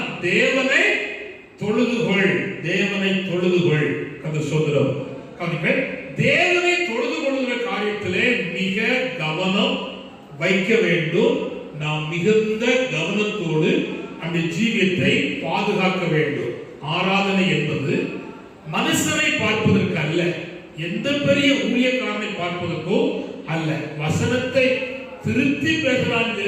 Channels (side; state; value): both; identical; correlation 1.00